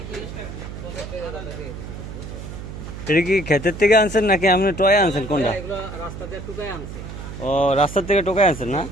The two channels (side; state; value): right; noise; hum, 10 dB below the sound